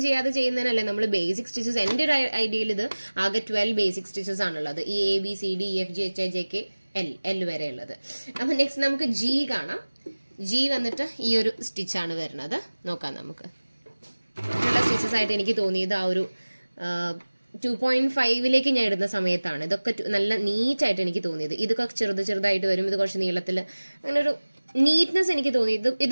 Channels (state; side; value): inverted; both; correlation -1.00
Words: ചെയ്യാതെ ചെയ്യുന്നതിനല്ലേ നമ്മൾ ബേസിക് സ്റ്റിച്ചസ്. എന്റെ ഒരു ഐഡിയയിൽ ഇത് ആകെ 12 ബേസിക് സ്റ്റിച്ചസ് ആണുള്ളത്. ഈ ABCDEFGHIJK L വരെ ഉള്ളത്. അപ്പൊ നെക്സ്റ്റ് നമുക്ക് G കാണാം. G വന്നിട്ട് ഈ ഒരു സ്റ്റിച്ചാണ് വരുന്നത്. നോക്കാം നമുക്ക്. ഉള്ള സ്റ്റിച്ചസ് ആയിട്ട് എനിക്ക് തോന്നിയത് ആ ഒരു 2.5 ഞാൻ ഇടുന്ന സമയത്താണ് ഇതൊക്കെ നല്ല നീറ്റായിട്ട് എനിക്ക് തോന്നിയത്. ഇതൊക്കെ ചെറുതായിട്ട് വരും, ഇത് കുറച്ച് നീളത്തിൽ, അങ്ങനെ ഒരു നീറ്റ്നെസ് എനിക്ക് തോന്നി.